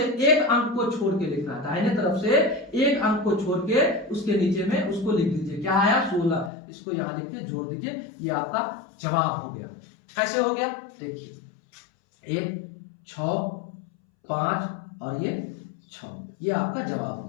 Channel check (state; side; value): drops out; right; at 6.5 s